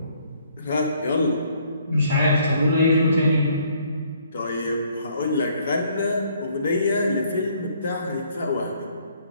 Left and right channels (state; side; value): inverted; both; correlation -0.64